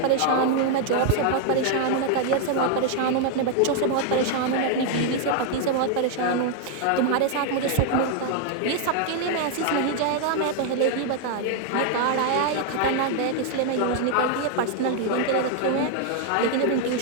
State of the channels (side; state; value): both; different; correlation 0.00